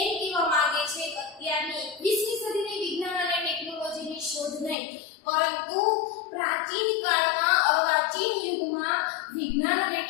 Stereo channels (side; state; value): right; drops out; at 4.8 s